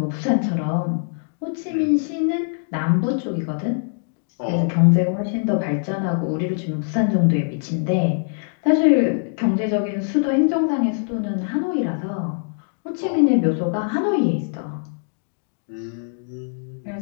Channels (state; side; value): silent; right; digital silence